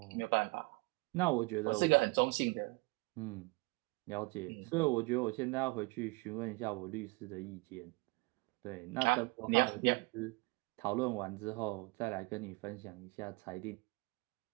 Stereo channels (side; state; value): left; quieter; 26.8 dB